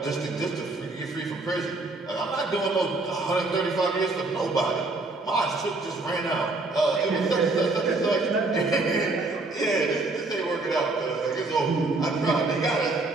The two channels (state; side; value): quieter; left; 3.2 dB